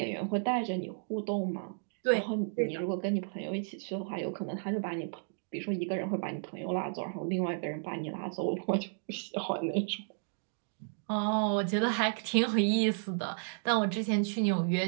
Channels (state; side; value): silent; left; digital silence